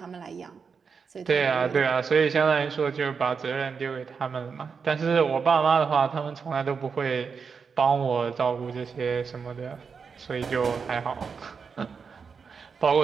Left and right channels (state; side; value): quieter; left; 5.7 dB